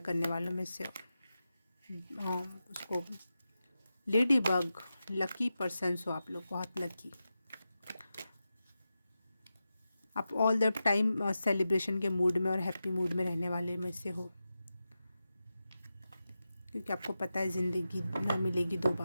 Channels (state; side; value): inverted; both; correlation -0.91